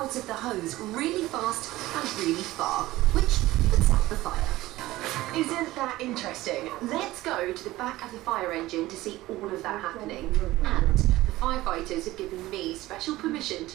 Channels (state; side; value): quieter; left; 17.4 dB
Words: of the hose really fast and really far, which puts out the fire. Isn't that interesting? Let's go to the back of the fire engine to see all of that happening. And the firefighters have given me special permission